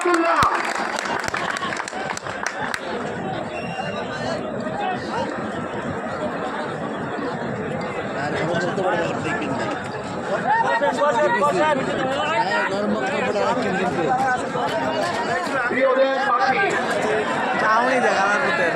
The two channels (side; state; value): both; identical; correlation 1.00